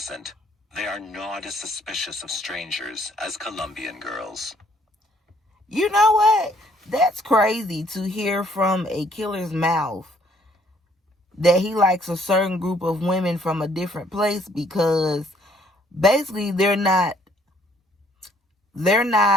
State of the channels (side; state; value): both; normal; correlation 0.64